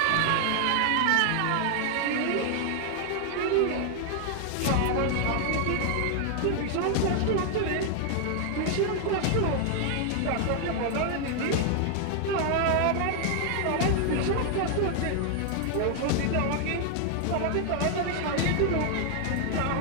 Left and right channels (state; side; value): different; both; correlation 0.00